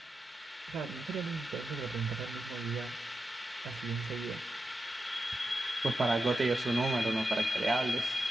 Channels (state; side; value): normal; both; correlation 0.89